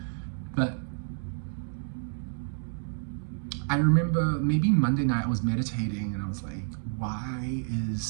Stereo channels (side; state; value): left; silent; digital silence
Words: But I remember maybe Monday night I was meditating, and I was like, why is